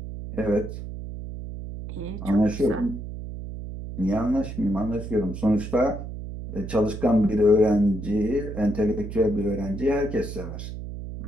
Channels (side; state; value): right; noise; hum, 9 dB below the sound